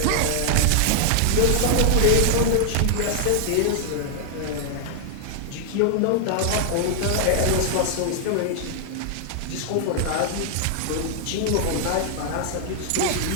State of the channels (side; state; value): both; different; correlation 0.00